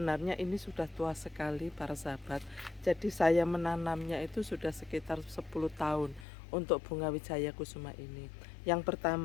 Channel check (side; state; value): right; drops out; at 6.2 s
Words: ini sudah tua sekali para sahabat. Jadi saya menanamnya itu sudah sekitar 10 tahun untuk bunga wijaya kusuma ini. Yang